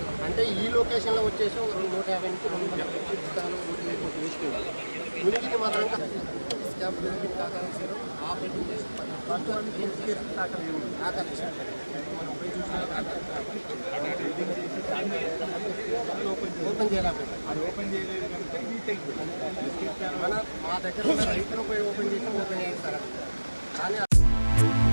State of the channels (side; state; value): both; inverted; correlation -1.00